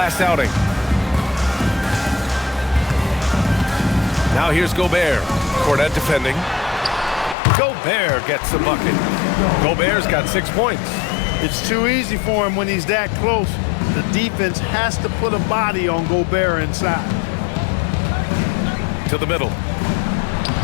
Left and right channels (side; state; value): right; drops out; at 7.4 s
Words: outing. Now here's Gobert. Cornette defending. Gobert gets the bucket. Gobert's got 6 points. It's too easy for him when he's that close. The defense has to put a body on Gobert inside. To the middle.